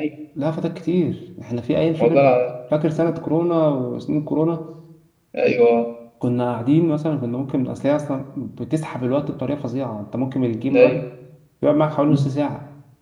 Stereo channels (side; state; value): both; identical; correlation 1.00